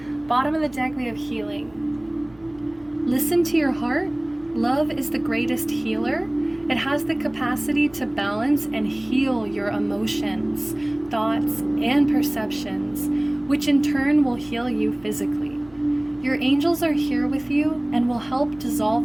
Bottom of the deck, we have healing. Listen to your heart. Love is the greatest healer. It has the capacity to balance and heal your emotions, thoughts, and perceptions, which in turn will heal you physically. Your angels are here with you and will help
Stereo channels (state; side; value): noise; right; hum, 28 dB below the sound